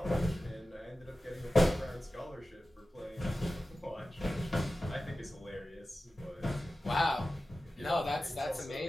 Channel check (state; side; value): normal; both; correlation 0.95